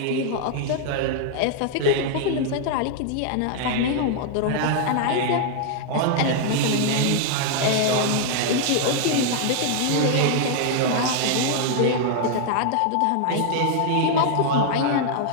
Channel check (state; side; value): different; both; correlation 0.00